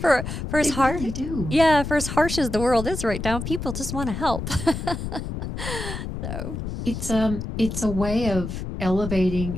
as They hard, really do. yeah, for as harsh as the world is right now, people just want to help. So, It's a way of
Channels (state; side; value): noise; left; rumble, 6 dB below the sound